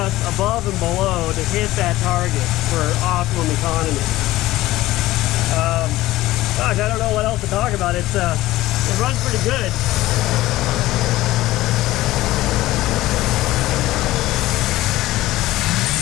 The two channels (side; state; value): right; quieter; 16.8 dB